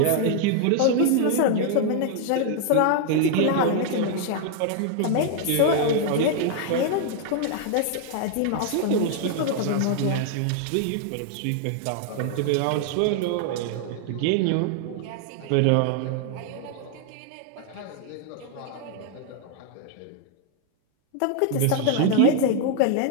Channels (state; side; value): different; both; correlation 0.00